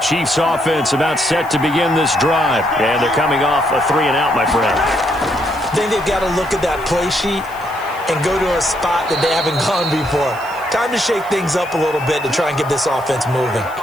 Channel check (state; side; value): noise; left; hiss, 23 dB below the sound